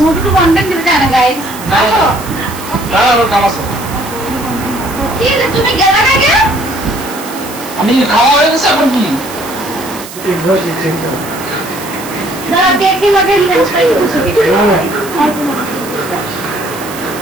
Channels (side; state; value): right; noise; hiss, 14 dB below the sound